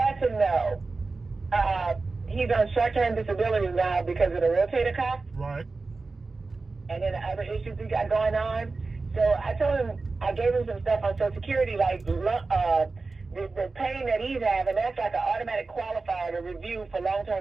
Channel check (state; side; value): quieter; left; 3.8 dB